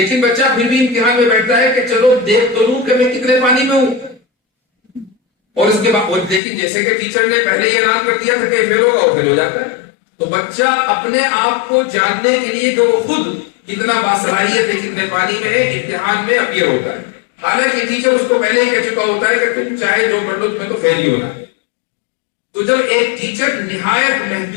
بچہ پھر بھی امتحان میں بیٹھتا ہے کہ چلو دیکھ تو لوں کہ میں کتنے پانی میں ہوں. اور اس کے بعد لیکن جیسے کہ ٹیچر نے پہلے یہ اعلان کر دیا تھا کہ فیل ہوگا، وہ فیل ہو جاتا ہے. تو بچہ اپنے آپ کو جاننے کے لیے کہ وہ خود کتنا باصلاحیت ہے، کتنے پانی میں ہے، امتحان میں اپیئر ہوتا ہے. حالانکہ ٹیچر اس کو پہلے ہی کہہ چکا ہوتا ہے کہ تم چاہے جو کر لو تمہیں تو فیل ہی ہونا ہے. تو جب ایک ٹیچر نہایت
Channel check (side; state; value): right; drops out; at 6.4 s